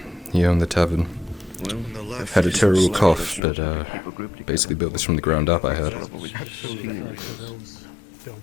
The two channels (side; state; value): right; drops out; at 3.4 s